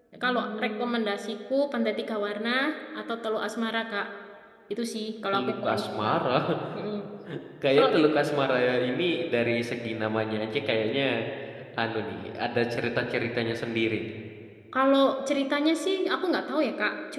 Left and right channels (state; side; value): identical; both; correlation 1.00